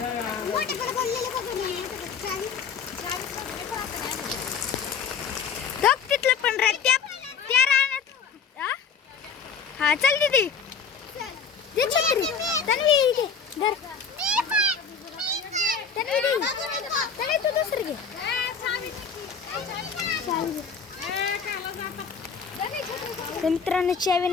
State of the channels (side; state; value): right; quieter; 6.0 dB